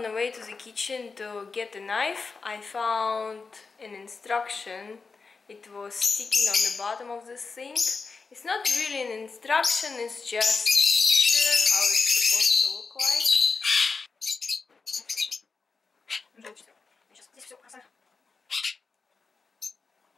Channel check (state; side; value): quieter; right; 4.6 dB